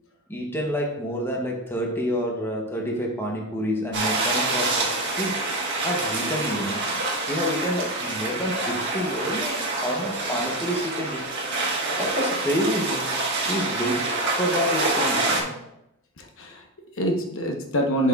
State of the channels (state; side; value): normal; both; correlation 0.15